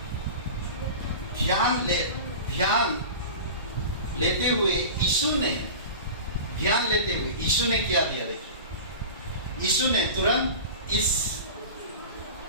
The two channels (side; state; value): both; inverted; correlation -0.33